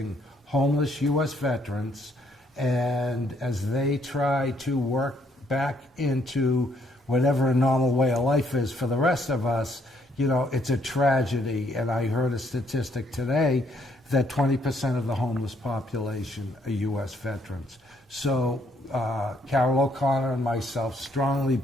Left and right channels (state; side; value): normal; both; correlation 0.69